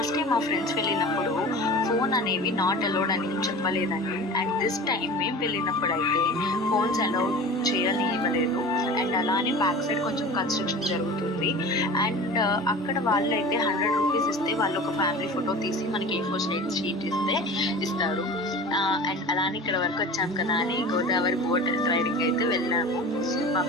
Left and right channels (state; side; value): normal; both; correlation 0.36